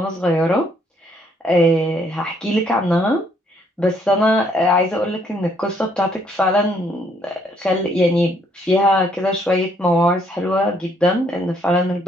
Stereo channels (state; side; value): normal; both; correlation 0.68